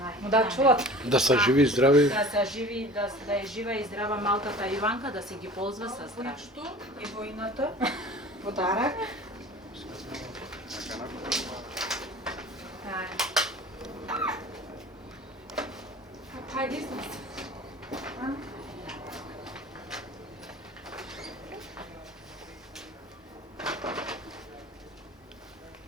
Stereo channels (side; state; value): both; normal; correlation 0.42